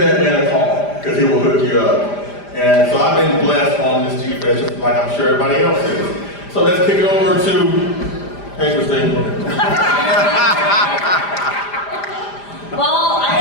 man a call, because he will hook you up. And so I've been blessed on this G-Fest, just like I'm sure everybody else is. So let's kick it over to, hey Christine. Well, I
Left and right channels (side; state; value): right; late; 5.0 ms